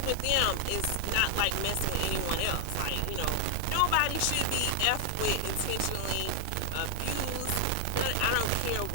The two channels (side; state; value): both; different; correlation 0.00